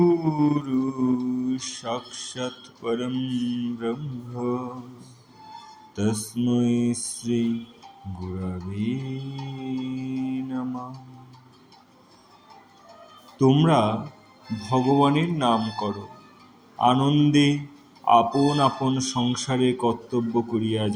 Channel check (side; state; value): both; identical; correlation 1.00